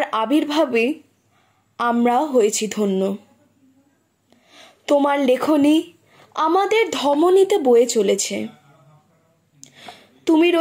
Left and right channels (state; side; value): identical; both; correlation 1.00